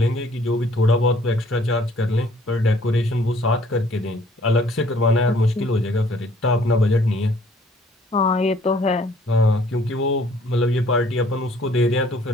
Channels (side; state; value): both; normal; correlation 0.59